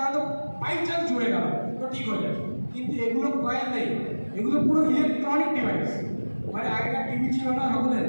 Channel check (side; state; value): both; inverted; correlation -1.00